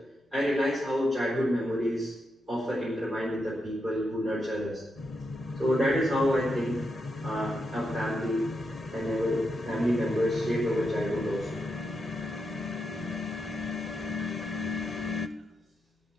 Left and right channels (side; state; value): both; normal; correlation 0.84